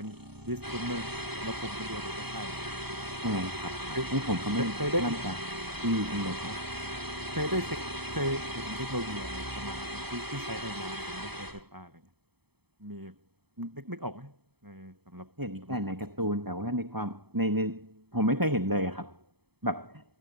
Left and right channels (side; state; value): left; late; 0.98 ms